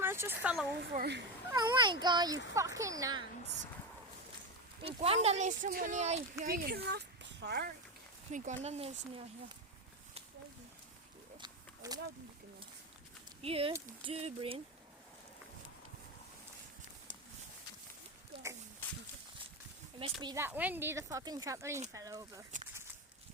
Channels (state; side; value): normal; both; correlation 0.15